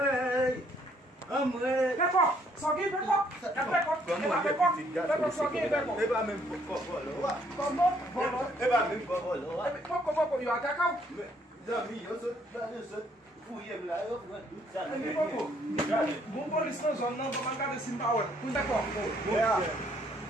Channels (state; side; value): normal; both; correlation 0.67